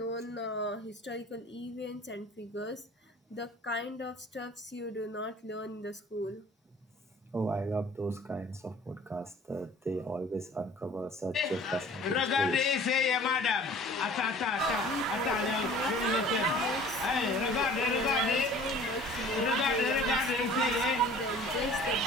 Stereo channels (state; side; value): normal; both; correlation 0.48